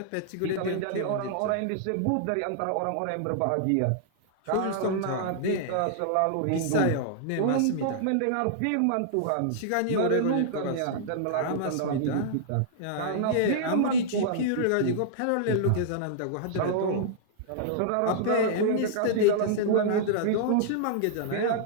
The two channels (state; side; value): different; both; correlation -0.01